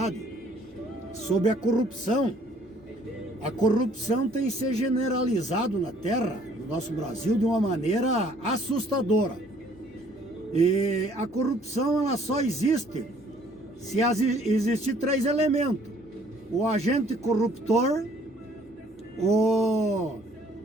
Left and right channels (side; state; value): both; normal; correlation 0.60